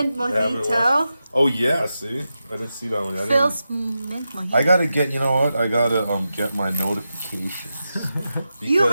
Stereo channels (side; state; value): both; inverted; correlation -0.90